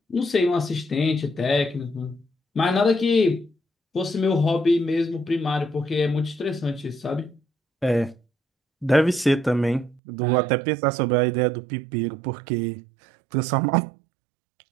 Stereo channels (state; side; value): drops out; left; at 10.0 s